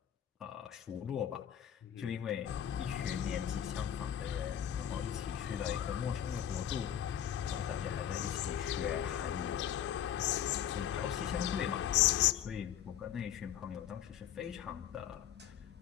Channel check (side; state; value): right; quieter; 10.2 dB